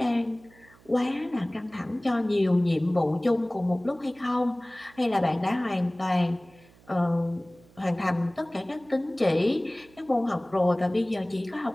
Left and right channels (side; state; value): right; noise; hum, 27 dB below the sound